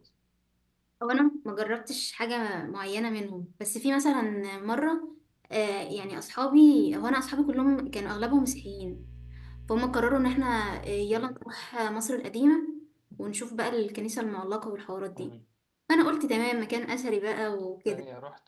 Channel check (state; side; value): identical; both; correlation 1.00